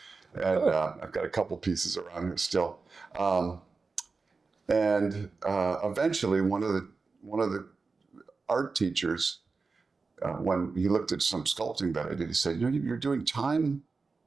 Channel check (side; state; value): left; quieter; 4.3 dB